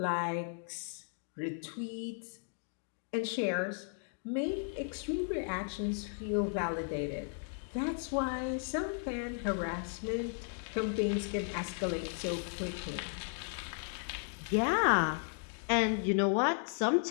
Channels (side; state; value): right; silent; 54 dB below the other